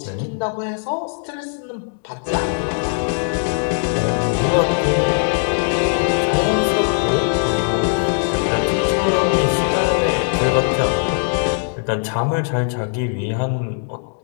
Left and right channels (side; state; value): right; silent; 66 dB below the other